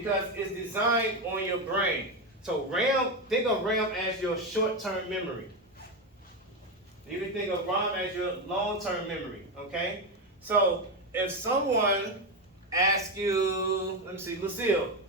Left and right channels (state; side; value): normal; both; correlation 0.12